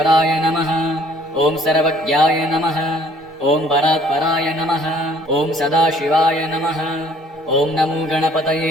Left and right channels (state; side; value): normal; both; correlation 0.58